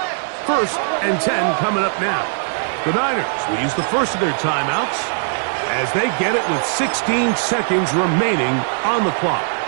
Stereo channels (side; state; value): left; silent; digital silence